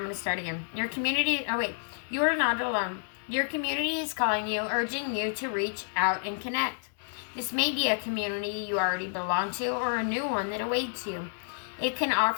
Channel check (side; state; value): right; silent; digital silence